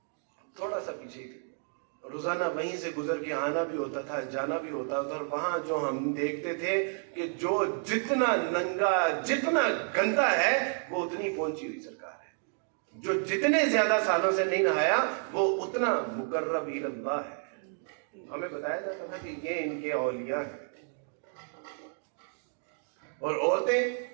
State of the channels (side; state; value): left; silent; 57 dB below the other